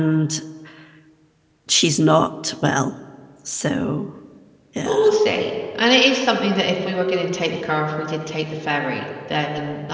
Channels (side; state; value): both; identical; correlation 1.00